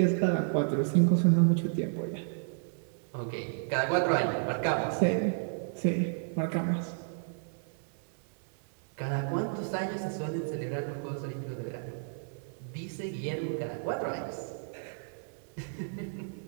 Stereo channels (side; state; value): left; silent; 56 dB below the other